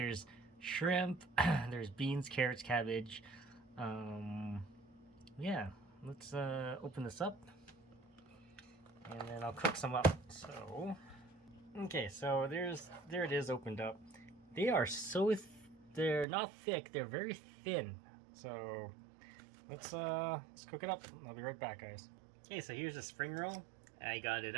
shrimp, there's beans, carrots, cabbage. Yeah, let's open this up. And then I'll cook some up. So, okay, so there it is opened up. They are they're not thick, they're very thin. So let's cook it up. I'll be right back, guys. Okay, so here's a spring roll. I got it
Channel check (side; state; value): left; drops out; at 16.2 s